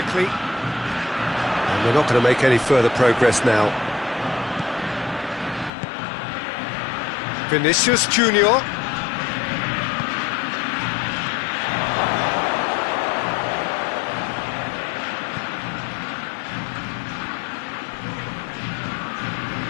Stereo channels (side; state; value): right; drops out; at 5.7 s